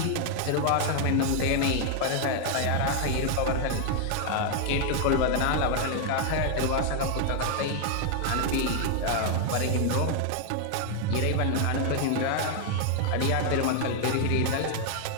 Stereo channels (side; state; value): both; different; correlation 0.00